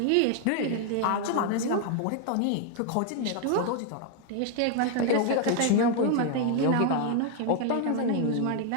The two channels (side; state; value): both; different; correlation 0.00